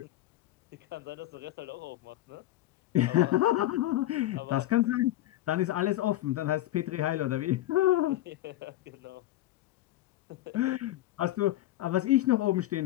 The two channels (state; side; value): quieter; right; 15.0 dB